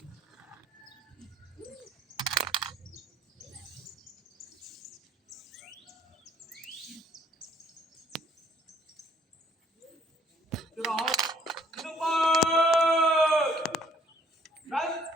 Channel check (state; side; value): normal; both; correlation 0.62